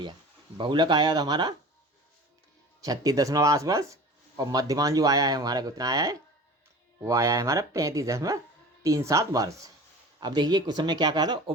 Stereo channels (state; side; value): normal; both; correlation 0.39